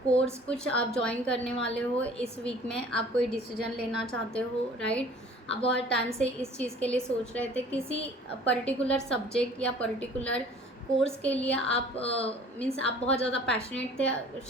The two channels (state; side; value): normal; both; correlation 0.49